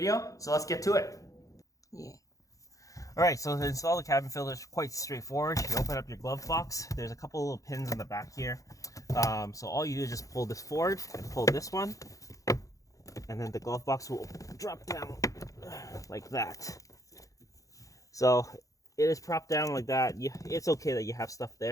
So let's get to it. Yeah. Alright, so to install the cabin filter is quite straightforward. You open up your glove box. There's a couple little pins on the back here. So all you do is just pull this forward and pull this one. And then the glove box will drop down like that. So it is propped down like that. It's okay that you have stuff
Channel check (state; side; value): late; right; 0.16 ms